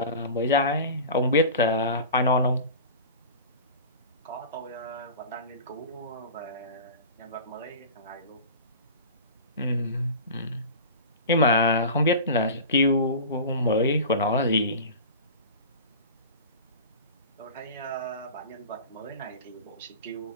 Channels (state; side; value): inverted; both; correlation -0.34